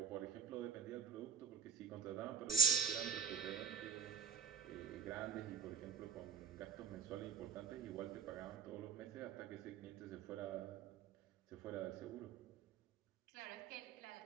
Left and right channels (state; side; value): quieter; left; 6.2 dB